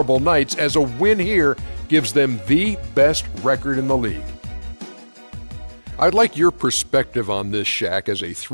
nights, as a win here gives them the best record in the league. I'd like your perspective on this, Shaq, as a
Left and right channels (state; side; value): inverted; both; correlation -1.00